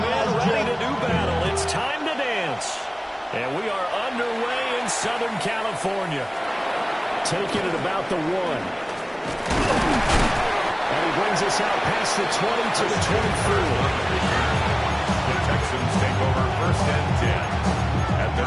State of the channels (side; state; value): both; identical; correlation 1.00